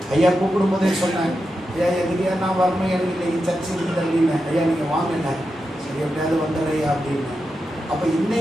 ஐயா கூப்பிடும் போதே சொன்னேன், ஐயா எதுக்கையா நான் வரணும், எனக்கு இன்னைக்கு சர்ச்சை இருக்குது அப்படின்னு. ஐயா நீங்கள் வாங்கின சரி எப்படியாவது வந்துடுறையா அப்படின்னு. அப்போ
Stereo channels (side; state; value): both; normal; correlation 0.88